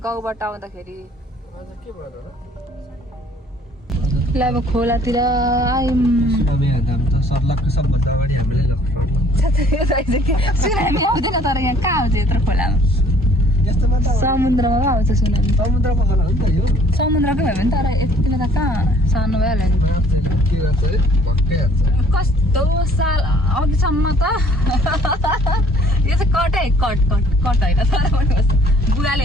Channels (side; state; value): both; normal; correlation 0.57